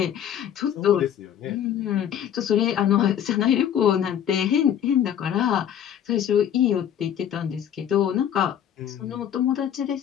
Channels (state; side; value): quieter; right; 9.7 dB